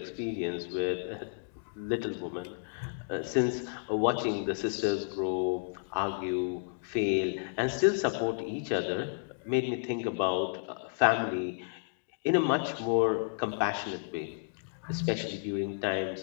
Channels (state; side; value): silent; right; digital silence